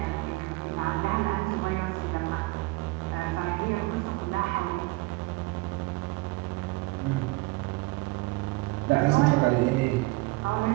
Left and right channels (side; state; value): left; quieter; 22.6 dB